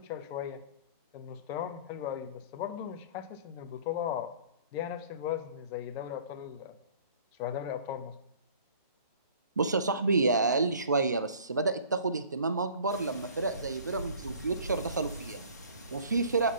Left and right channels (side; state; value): both; inverted; correlation -0.51